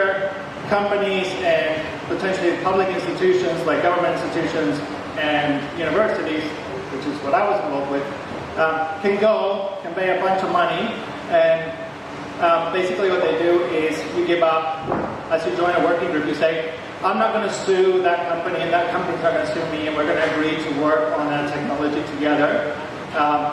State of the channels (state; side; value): identical; both; correlation 1.00